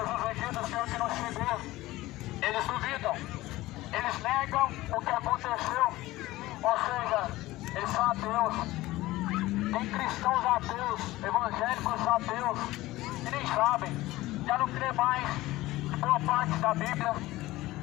O dia do Senhor que não chegou. Eles duvidam, eles negam o que aconteceu, ou seja, eles são ateus. Tem cristãos ateus, evangélicos ateus, que nem sabem, já não crê mais em boa parte da Bíblia,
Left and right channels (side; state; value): right; quieter; 17.8 dB